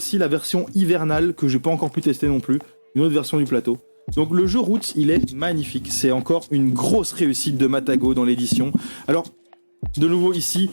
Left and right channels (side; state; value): both; inverted; correlation -1.00